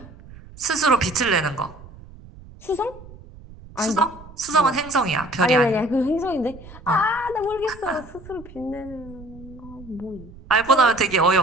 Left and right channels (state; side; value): noise; right; rumble, 19 dB below the sound